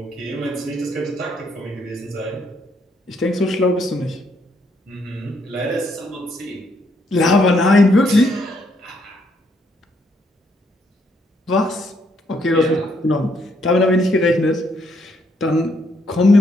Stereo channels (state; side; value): normal; both; correlation 0.73